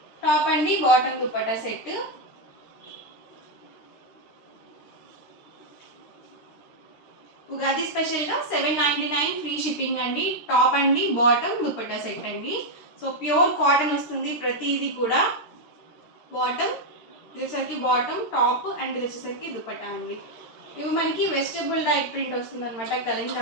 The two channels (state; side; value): late; right; 13 ms